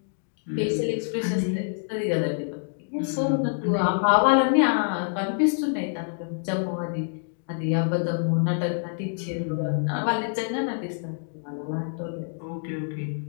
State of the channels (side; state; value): right; silent; digital silence